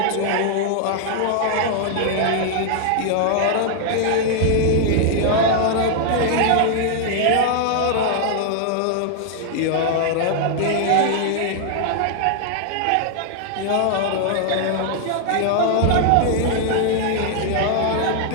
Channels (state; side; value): different; both; correlation -0.01